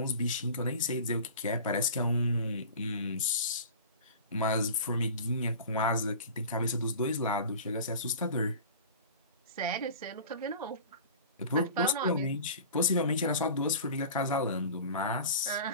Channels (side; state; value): both; inverted; correlation -0.38